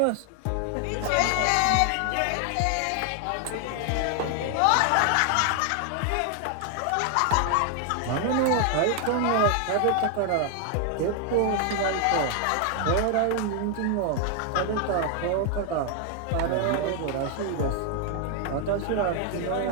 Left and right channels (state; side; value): different; both; correlation 0.00